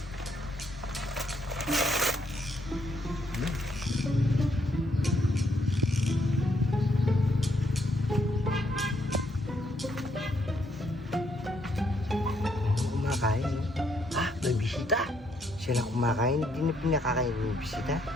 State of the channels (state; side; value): normal; both; correlation 0.73